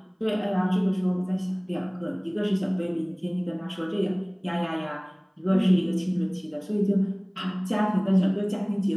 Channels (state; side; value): identical; both; correlation 1.00